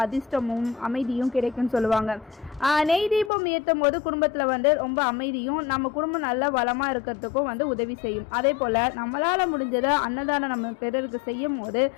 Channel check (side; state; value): right; drops out; at 3.3 s